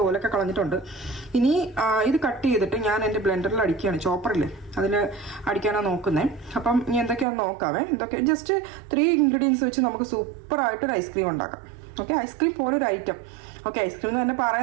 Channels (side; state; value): left; drops out; at 7.2 s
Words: കളഞ്ഞിട്ടുണ്ട്. ഇനി ഇത് കട്ട് ചെയ്തിട്ട് ഞാൻ എൻ്റെ ബ്ലെൻഡറിൽ അടിക്കുകയാണ്, ചോപ്പറിൽ അതിൽ അടിക്കാനാണ് നോക്കുന്നത്. അപ്പം ഇനി എന്തൊക്കെയാണെന്ന് നോക്കാവേ. എന്തൊക്കെ ജസ്റ്റ് 3 ഇൻഗ്രീഡിയൻസ് വെച്ച് നമുക്ക് സൂപ്പറായിട്ടൊരു ഐസ്ക്രീം ഉണ്ടാക്കാം. ഓക്കെ, ഐസ്ക്രീം പോലൊരു ഐറ്റം. ഓക്കെ, ഐസ്ക്രീം എന്ന് തന്നെ